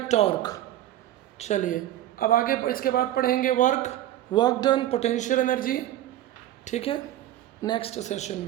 टॉर्क। चलिए अब आगे इसके बाद पढ़ेंगे वर्क डन, पोटेंशियल एनर्जी, ठीक है, नेक्स्ट सेशन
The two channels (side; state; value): left; quieter; 13.3 dB